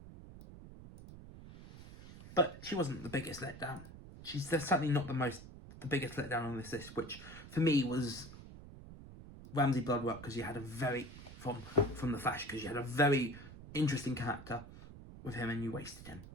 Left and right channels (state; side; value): noise; right; rumble, 15 dB below the sound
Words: But she wasn't the biggest letdown. She's certainly not the biggest letdown on this list, which for me was Ramsay Bloodwork, because you had a very, from The Flash, because you had a very interesting character with him and you wasted him.